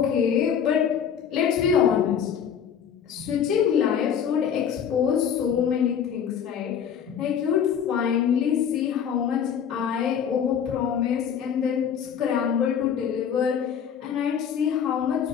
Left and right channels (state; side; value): quieter; right; 8.1 dB